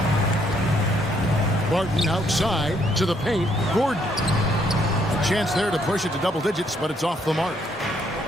Barton outside to the paint. Gordon. A chance there to push it to double digits, but it's off the mark.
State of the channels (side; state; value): both; normal; correlation 0.70